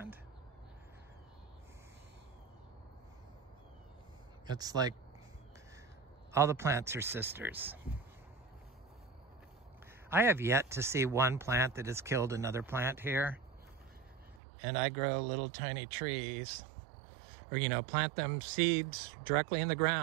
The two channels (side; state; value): left; drops out; at 14.4 s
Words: It's like all the plants are sisters. I have yet to see one plant that has killed another plant here. And I grow little tiny trees, or, you know, plant them seeds directly in the